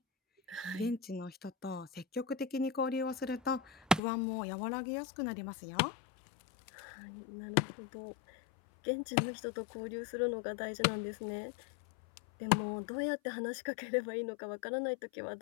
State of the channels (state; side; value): drops out; right; at 4.0 s